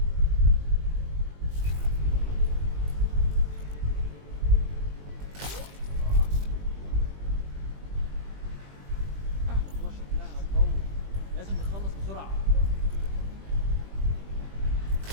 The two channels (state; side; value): late; left; 20 ms